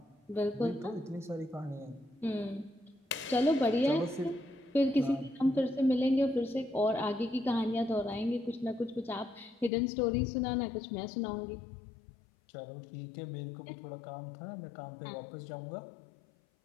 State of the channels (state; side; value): drops out; right; at 9.7 s